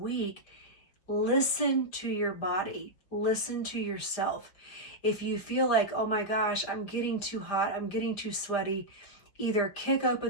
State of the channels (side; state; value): right; late; 5.1 ms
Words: listen to your body, listen to yourself. If you feel like, oh my gosh, I'm getting too hot, I'm getting too sweaty, either kick